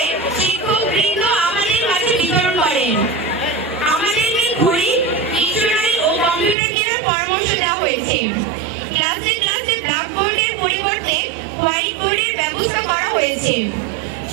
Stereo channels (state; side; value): drops out; left; at 6.6 s